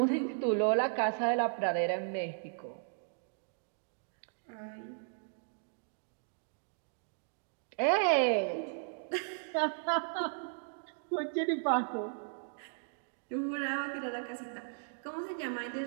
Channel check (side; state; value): left; silent; digital silence